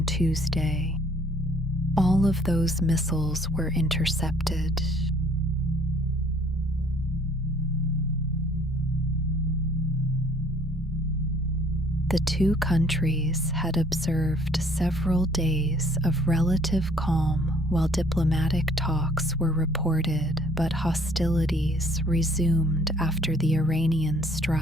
Tuesday. All of those missiles were intercepted. The 2 countries had observed several days of relative calm while diplomatic talks were reported, but hostilities resumed after the Iranian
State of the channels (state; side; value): normal; both; correlation 0.58